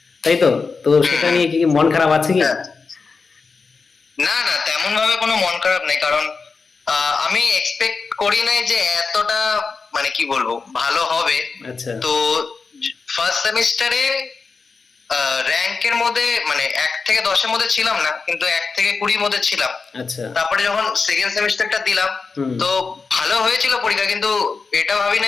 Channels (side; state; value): right; quieter; 4.7 dB